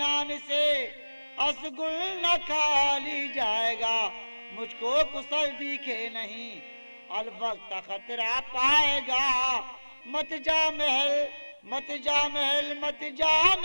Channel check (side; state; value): both; inverted; correlation -1.00